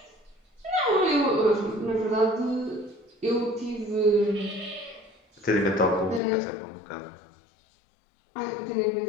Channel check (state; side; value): drops out; right; at 6.2 s